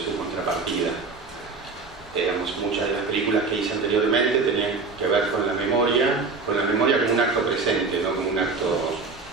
su contrapartida. Digamos, muchas de las películas que hice anteriormente tenían que ver con la memoria como un acto presente, no como un acto,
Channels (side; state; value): left; quieter; 4.2 dB